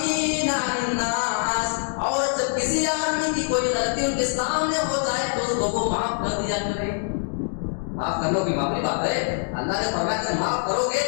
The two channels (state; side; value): silent; right; digital silence